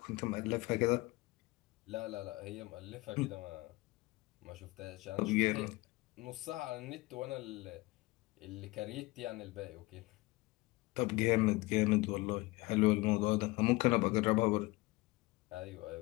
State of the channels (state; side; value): quieter; right; 22.1 dB